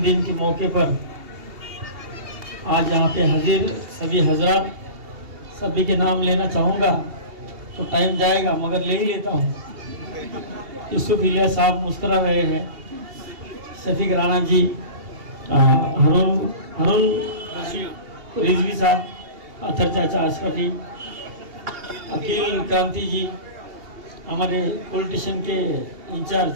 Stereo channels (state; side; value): late; left; 2.8 ms